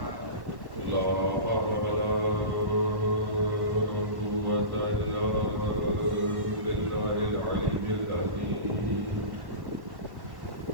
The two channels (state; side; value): late; left; 1.1 ms